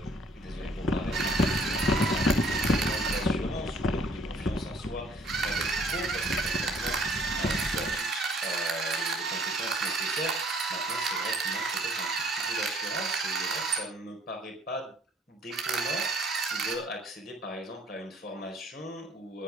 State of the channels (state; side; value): normal; both; correlation 0.59